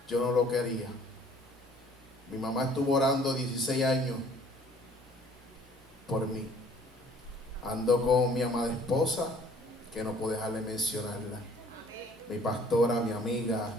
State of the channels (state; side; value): normal; both; correlation 0.55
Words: Yo no lo quería. Mi mamá estuvo orando 16 años por mí. Ando con mi amada esposa, que no puedo dejar de mencionarla. Mi pastora, mi amiga,